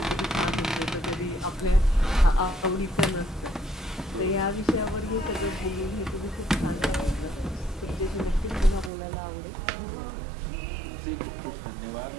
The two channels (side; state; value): left; drops out; at 8.9 s